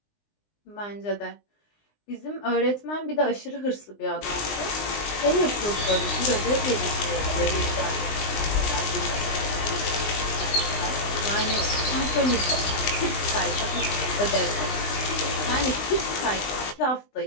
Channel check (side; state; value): right; late; 20 ms